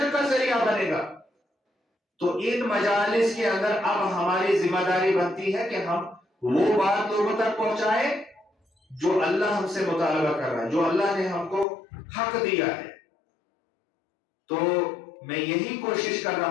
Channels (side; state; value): right; drops out; at 11.7 s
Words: کا ذریعہ بنے گا۔ تو ان مجالس کے اندر اب ہماری ذمہ داری بنتی ہے کہ ہم وہ بات لوگوں تک پہنچائیں جو اللہ ہم سے مطالبہ کر رہا ہے، جو اللہ نے ہم کو حق دیا ہے۔ تو میں یہی کوشش کر